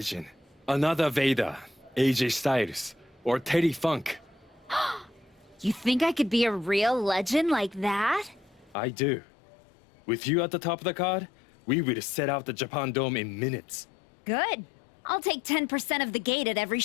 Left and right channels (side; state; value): right; drops out; at 8.8 s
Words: Another Vader, AJ Styles, or Terry Funk. You think I could be a real legend like that? I do. With you at the top of the card, we will set out the Japan Dome in minutes. Good. I'll take 10% of the gate at every